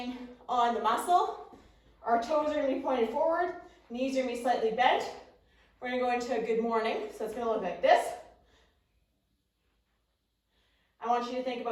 on the muscle. Our toes are going to be pointed forward, knees are going to be slightly bent. We're going to go into a good morning, so it's going to look like this. I want you to think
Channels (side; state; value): both; identical; correlation 1.00